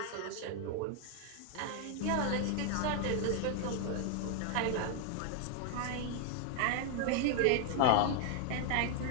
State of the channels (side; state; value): both; different; correlation 0.00